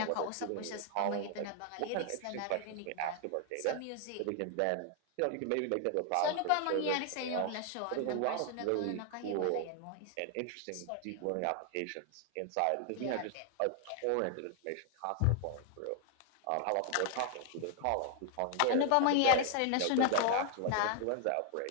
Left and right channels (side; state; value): both; different; correlation 0.00